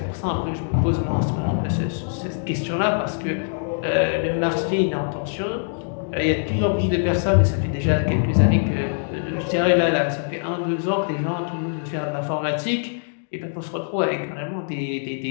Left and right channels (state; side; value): silent; right; digital silence